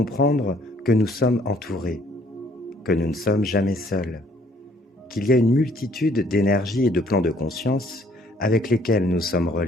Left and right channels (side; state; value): both; normal; correlation 0.62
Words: que nous sommes entourés, que nous ne sommes jamais seuls, qu'il y a une multitude d'énergies et de plans de conscience avec lesquels nous sommes